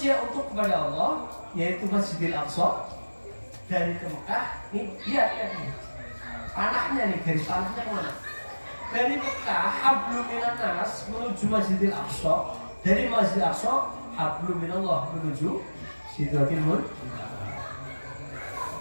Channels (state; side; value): inverted; both; correlation -1.00